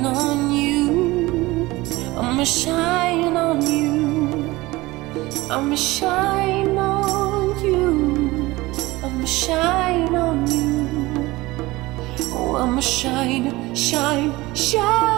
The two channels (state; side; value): quieter; left; 20.2 dB